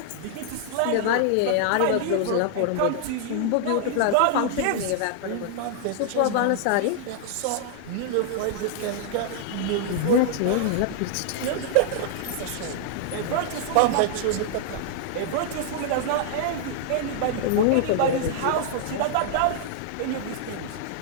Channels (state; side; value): different; both; correlation -0.01